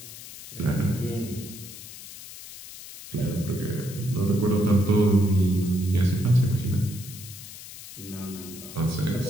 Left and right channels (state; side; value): noise; left; hiss, 14 dB below the sound